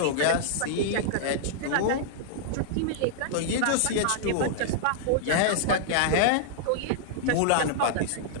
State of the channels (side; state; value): both; different; correlation -0.01